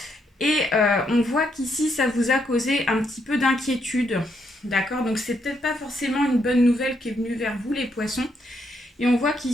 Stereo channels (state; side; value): normal; both; correlation 0.76